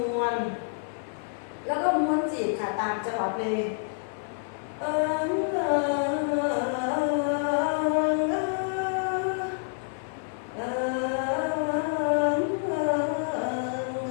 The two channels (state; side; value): silent; right; 55 dB below the other